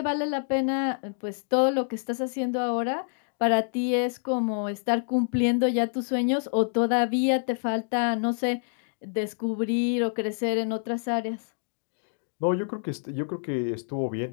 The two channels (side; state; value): right; silent; digital silence